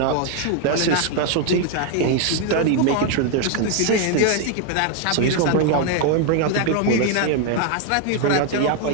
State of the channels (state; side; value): different; both; correlation 0.01